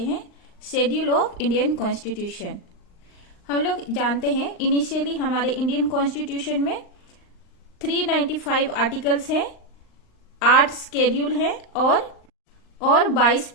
शेड्यूल ऑफ इंडियन कॉन्स्टिट्यूशन। हम लोग जानते हैं इनिशियली हमारे इंडियन कॉन्स्टिट्यूशन में 395 आर्टिकल्स हैं, 8 शेड्यूल हैं और 22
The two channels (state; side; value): late; right; 39 ms